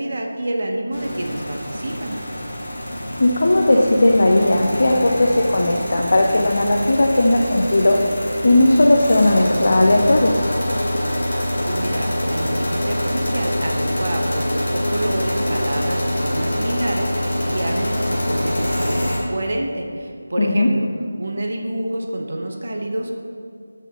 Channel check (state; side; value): inverted; both; correlation -0.96